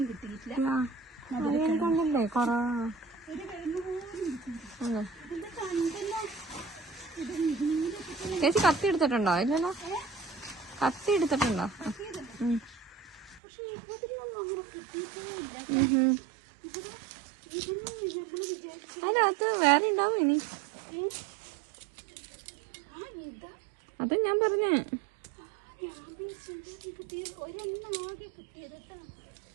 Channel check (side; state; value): left; drops out; at 13.4 s